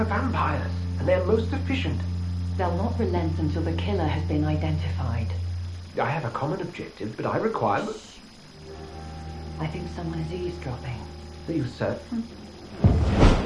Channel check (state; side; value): identical; both; correlation 1.00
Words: vampires, and they're most efficient. They'll not relent until the killer has been identified. I have a common objective, but I require... I think someone is eavesdropping. Are you certain?